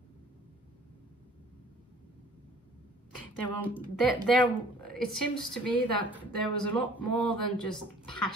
It seems to me that there was a lot more than just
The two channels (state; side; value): normal; both; correlation 0.53